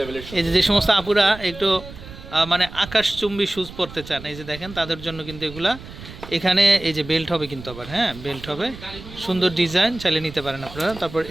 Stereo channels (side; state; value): right; noise; rumble, 15 dB below the sound